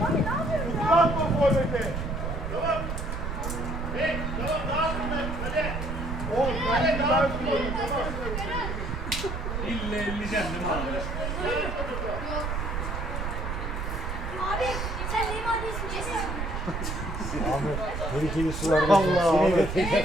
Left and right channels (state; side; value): noise; right; rumble, 4 dB below the sound